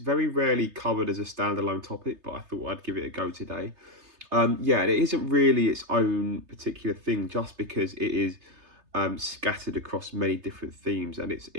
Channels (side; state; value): left; late; 3.3 ms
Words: rarely covered as a standalone topic, but I thought I'd give it a go today. It isn't really its own particular thing just because it is scattered across many different themes, and